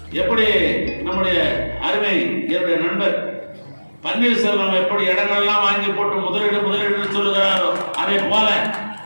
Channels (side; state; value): both; inverted; correlation -1.00